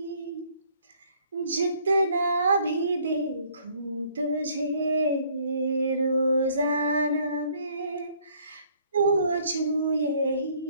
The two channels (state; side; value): inverted; both; correlation -0.61